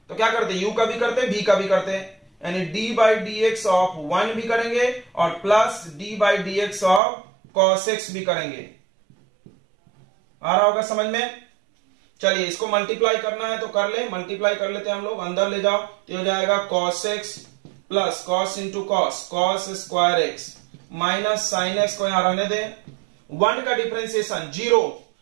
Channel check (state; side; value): drops out; left; at 7.0 s